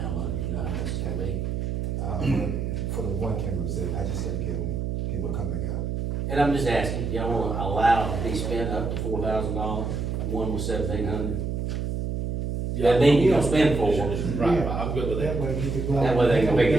of money, you know how much it's gonna be? For the one camera, I just gotta get them coming out. And I'm just asking, y'all wanna allow it to be spent up to $4,000, one was 1,700? That mean you don't spend four. Right, I'm good with that. That way we could go. That way they can make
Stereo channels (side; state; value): right; noise; hum, 2 dB below the sound